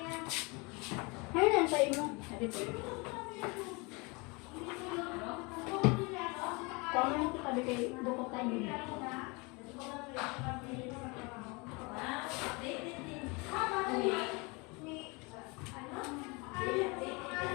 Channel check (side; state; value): right; quieter; 28.2 dB